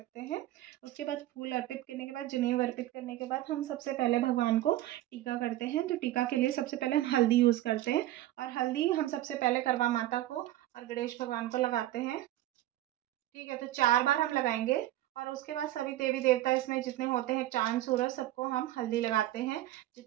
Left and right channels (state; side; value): quieter; left; 14.8 dB